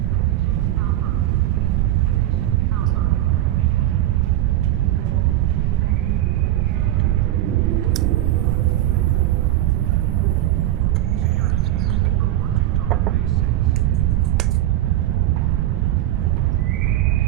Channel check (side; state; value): left; quieter; 13.9 dB